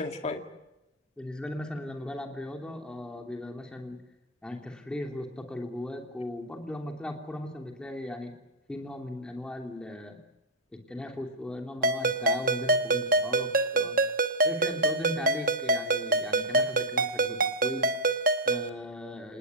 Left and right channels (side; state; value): both; normal; correlation -0.07